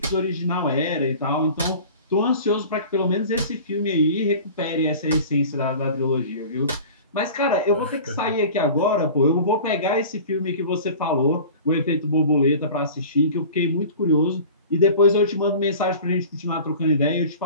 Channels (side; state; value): both; inverted; correlation -0.40